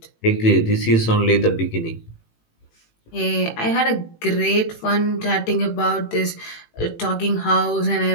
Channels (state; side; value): late; right; 18 ms